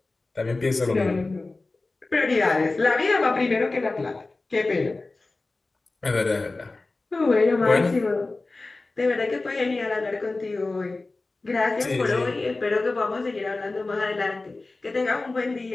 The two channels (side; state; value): right; quieter; 3.3 dB